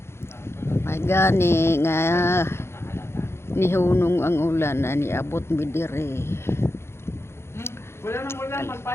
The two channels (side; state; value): right; late; 0.12 ms